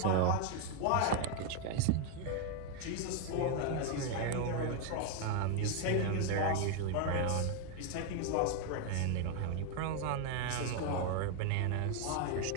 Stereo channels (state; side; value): different; both; correlation 0.01